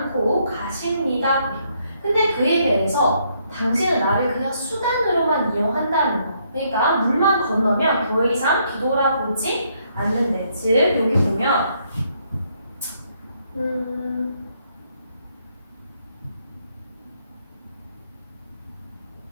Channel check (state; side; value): inverted; both; correlation -0.72